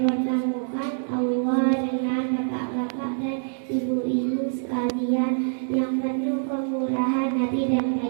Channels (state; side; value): silent; left; digital silence